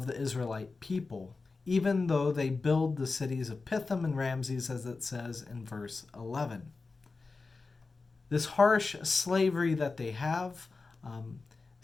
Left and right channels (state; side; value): quieter; right; 4.0 dB